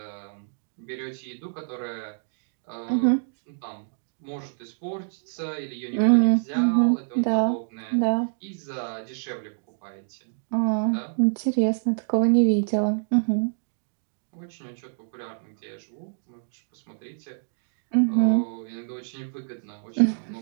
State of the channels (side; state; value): left; silent; digital silence